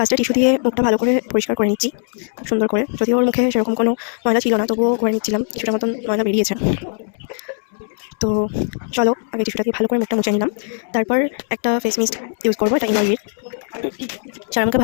টিস্যু দিয়ে মুখটা ভালো করে পরিষ্কার করে নিচ্ছি, খুব সুন্দর করে। যদিও ওর মুখে সেরকম কোনো ময়লা ছিল না, তবুও করে নিচ্ছিলাম। কিছুটা মতন ময়লা বেরিয়েছে। তো চলো আগে টিস্যুটা দিয়ে ভালো করে মুখটা মুছে নিলাম। তারপর একটা ফেস মিস্ট ইউজ করবো, এটা এনওয়াইভির। সেরামকে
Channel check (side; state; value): right; silent; 66 dB below the other